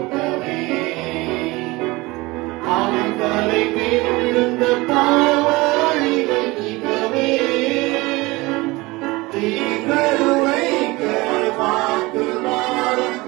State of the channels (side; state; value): left; quieter; 22.2 dB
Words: அவன் தலை மேலிருந்த பாவ அழிவை நீக்கவே. தீங்கருவைக்க வாக்கு மாறும்